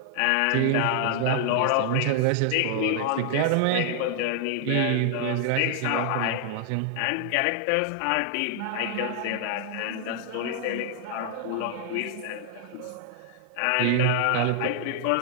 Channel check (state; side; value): different; both; correlation 0.00